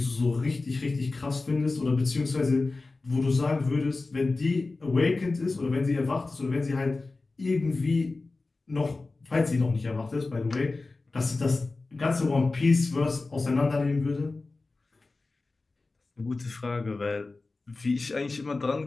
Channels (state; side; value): quieter; right; 3.5 dB